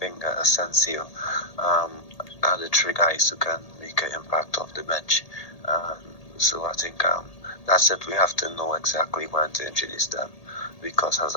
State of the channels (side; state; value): right; late; 1.8 ms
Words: Asensio, are the three guys who can make an impact off the bench. So I think that's it. We have to know exactly when to introduce them, because